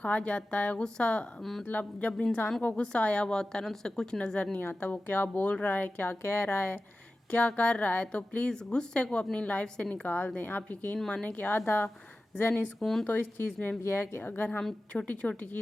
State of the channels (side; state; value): both; normal; correlation 0.95